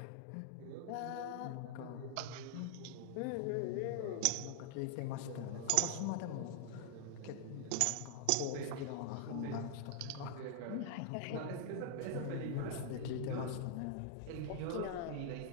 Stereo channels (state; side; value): different; both; correlation -0.01